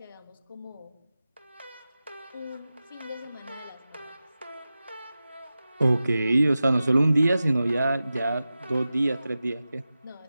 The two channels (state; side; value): inverted; both; correlation -0.94